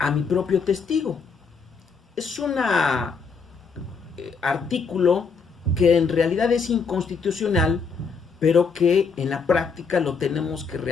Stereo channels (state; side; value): quieter; right; 5.2 dB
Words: mi propio testigo. Es un artículo que en realidad es inconstitucional, pero que en la práctica lo tenemos que